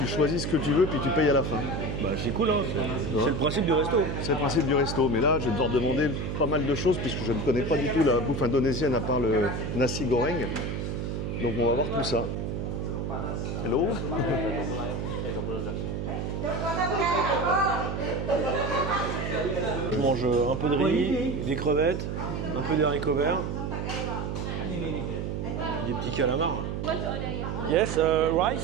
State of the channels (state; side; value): noise; right; hum, 3 dB below the sound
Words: choisis ce que tu veux puis tu payes à la fin. Bah c'est cool hein, c'est le principe du resto. C'est le principe du resto, mais là je vais devoir demander pas mal de choses puisque je ne connais pas du tout la bouffe indonésienne à part le nasi goreng. Donc on va voir tout ça. Hello. Je mange un peu de riz, des crevettes, un peu d'haricots verts, des petits calamars. Yes,